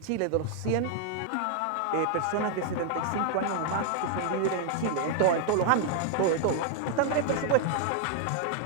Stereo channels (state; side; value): different; both; correlation 0.00